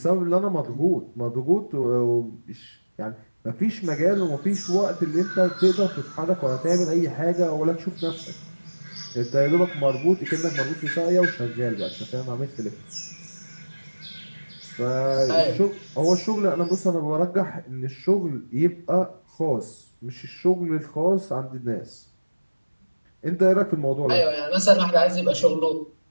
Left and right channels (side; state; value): both; inverted; correlation -1.00